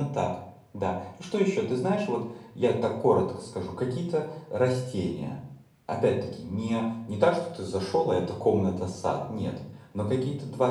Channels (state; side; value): identical; both; correlation 1.00